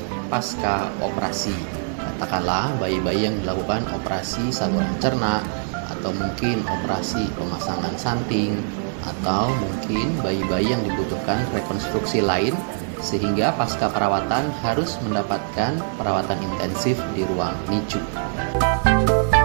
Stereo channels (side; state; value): left; silent; digital silence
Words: pasca operasi, katakanlah bayi-bayi yang dilakukan operasi saluran cerna atau mungkin operasi pemasangan samping atau mungkin bayi-bayi yang dibutuhkan rekonstruksi lain sehingga pasca perawatan harus mendapatkan perawatan intensif di ruang NICU.